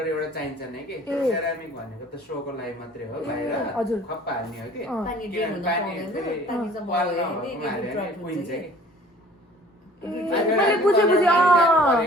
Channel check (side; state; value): both; normal; correlation 0.51